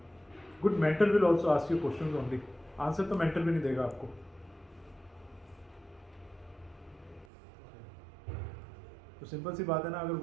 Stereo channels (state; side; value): drops out; left; at 7.2 s